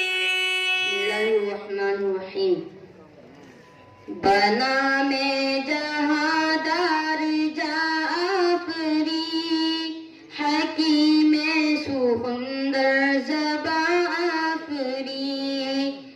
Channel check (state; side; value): identical; both; correlation 1.00